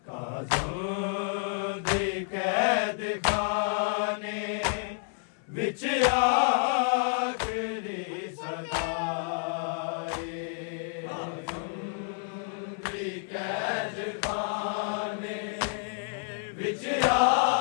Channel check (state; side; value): silent; right; 58 dB below the other